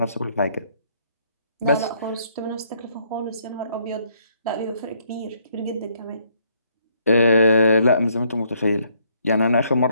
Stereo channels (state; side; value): inverted; both; correlation -0.69